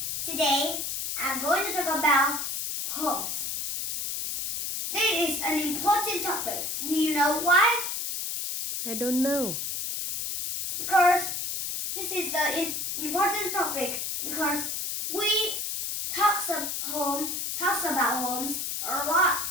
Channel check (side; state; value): left; noise; hiss, 3 dB below the sound